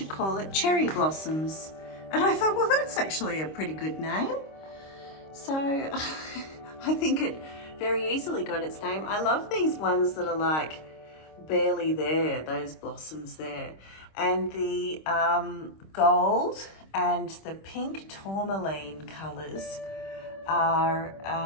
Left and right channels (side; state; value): right; late; 26 ms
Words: call it Cherry Blossoms." And I thought, well, that's actually a pretty good name. So I think it very easily got its name. I love these ones that are like barely there, those blossoms there. And the gold and the pink tourmaline colours are,